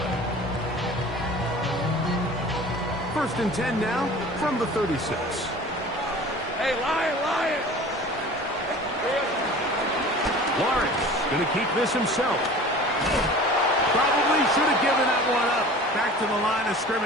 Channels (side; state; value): both; normal; correlation 0.41